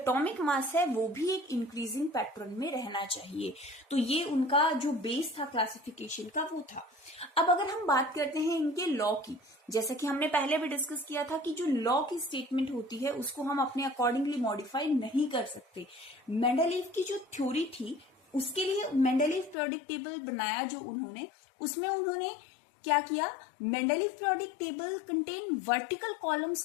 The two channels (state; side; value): drops out; right; at 19.6 s